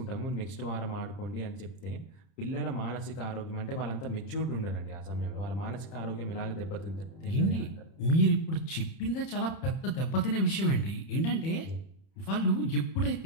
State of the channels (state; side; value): late; right; 31 ms